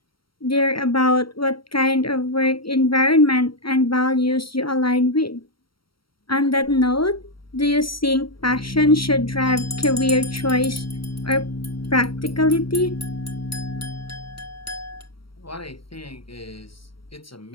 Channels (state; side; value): late; right; 0.74 ms